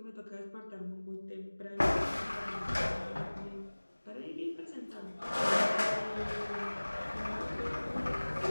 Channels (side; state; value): both; inverted; correlation -1.00